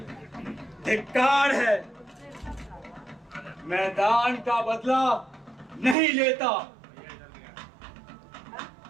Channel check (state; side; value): drops out; left; at 6.0 s